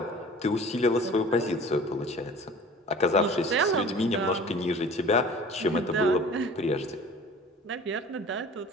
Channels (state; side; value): normal; both; correlation 0.44